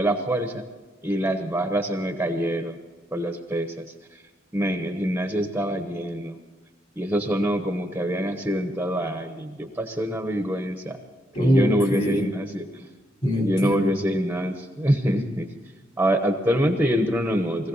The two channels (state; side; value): normal; both; correlation 0.77